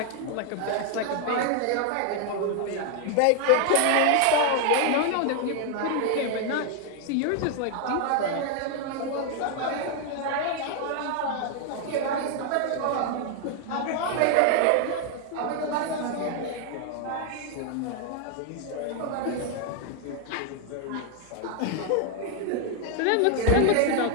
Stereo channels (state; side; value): different; both; correlation 0.00